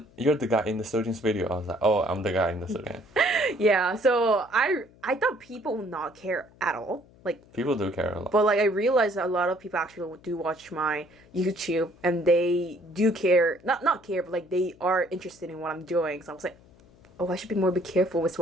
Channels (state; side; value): noise; left; hum, 27 dB below the sound